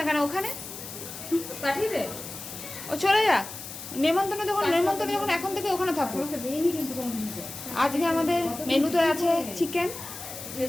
কেন ওখানে? পাঠিয়ে দে, ও চলে যা। নেমন্তন্ন যখন এখন থেকে ওখানে থাকবো। আজকে আমাদের মেনুতে আছে চিকেন,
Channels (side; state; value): left; noise; hiss, 11 dB below the sound